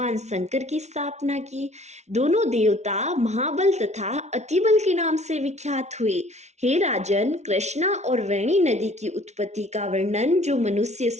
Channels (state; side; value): late; left; 0.32 ms